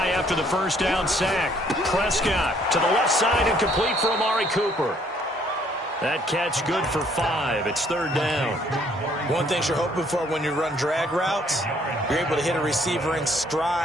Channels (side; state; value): both; normal; correlation 0.64